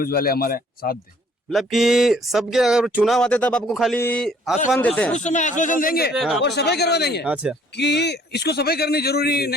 वाले हमारे साथ दे। मतलब कि सबके अगर चुनाव आते तब आपको खाली आसमान देते हैं। उस समय आश्वासन देंगे और सफाई करवा देंगे अच्छा, कि इसको सफाई करनी जरूरी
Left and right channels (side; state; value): both; normal; correlation 0.59